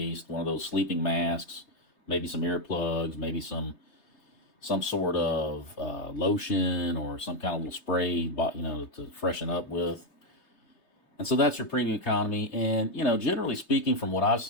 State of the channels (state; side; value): late; right; 3.3 ms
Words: one of those sleeping masks, maybe some earplugs, maybe some sort of lotion or some kind of little spray, to freshen up with. And so that's your premium economy. And, generally speaking, from what I've